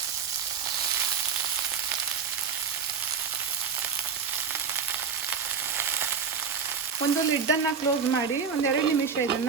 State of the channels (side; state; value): left; quieter; 6.0 dB